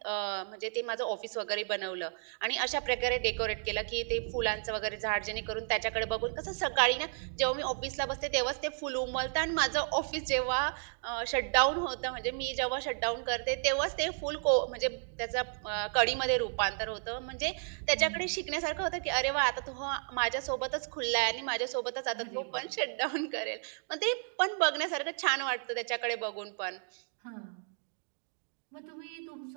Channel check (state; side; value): silent; left; 56 dB below the other